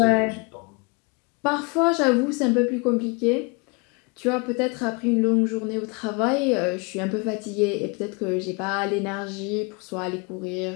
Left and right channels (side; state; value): right; quieter; 31.0 dB